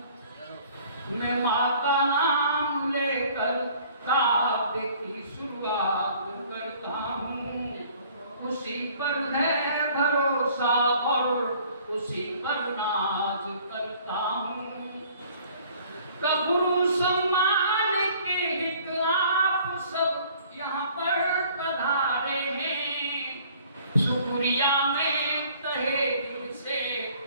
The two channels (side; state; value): both; inverted; correlation -0.55